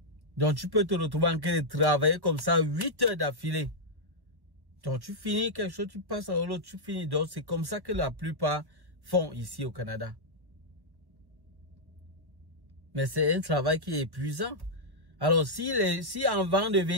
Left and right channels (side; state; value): left; late; 1.1 ms